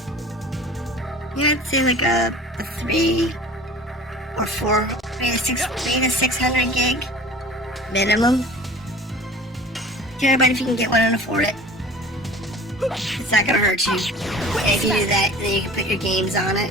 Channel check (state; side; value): normal; both; correlation 0.42